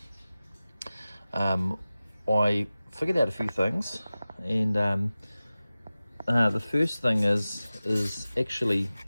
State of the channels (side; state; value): both; inverted; correlation -0.96